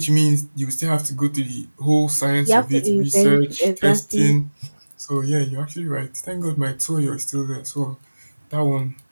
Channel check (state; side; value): inverted; both; correlation -1.00